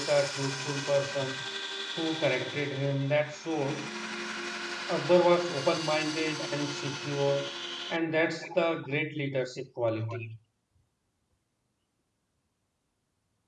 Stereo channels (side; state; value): both; identical; correlation 1.00